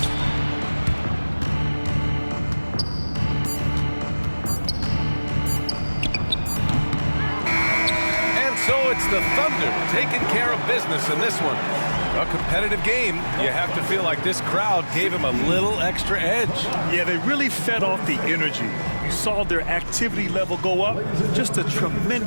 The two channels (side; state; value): both; inverted; correlation -1.00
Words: So it's the Thunder taking care of business in this one. A competitive game. You have to feel like this crowd gave him a little extra edge. Yeah, they really fed off the energy. You saw their activity level go up. Just a